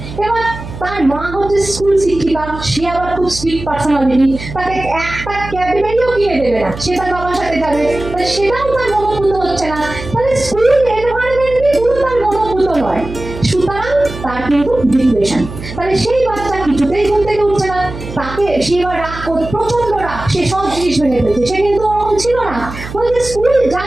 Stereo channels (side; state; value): right; noise; hum, 11 dB below the sound